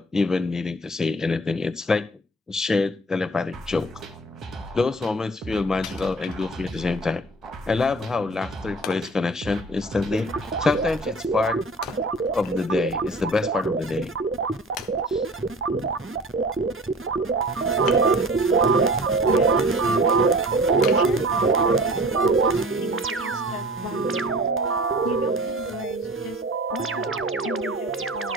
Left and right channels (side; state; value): both; normal; correlation 0.43